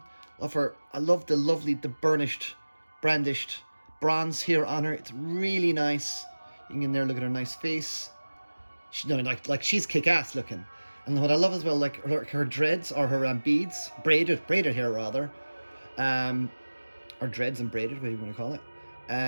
I love the lovely, the burnished, brandished bronze here on her. It's really nice. You can get in there, look at her nice face. She, no, like she's kick-ass looking. And what I love as well, like her dreads or her beads, braided hair rather, or dreads and braided, whatever you want to call it.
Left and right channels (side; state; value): both; inverted; correlation -1.00